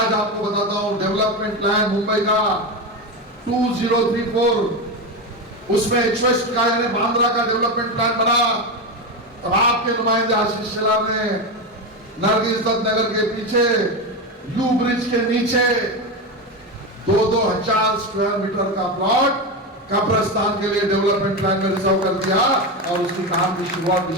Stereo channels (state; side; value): normal; both; correlation 0.16